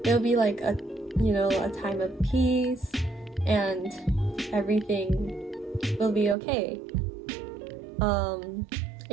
it'll be like a time of peace and everything will be okay.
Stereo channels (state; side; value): drops out; left; at 6.4 s